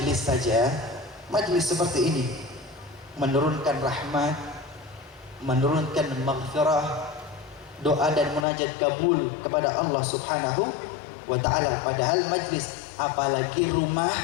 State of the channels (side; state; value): right; drops out; at 8.5 s